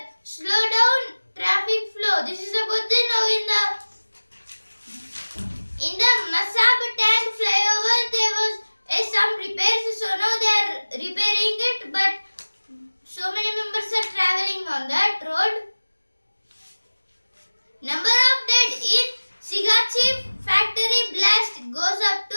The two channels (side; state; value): both; inverted; correlation -1.00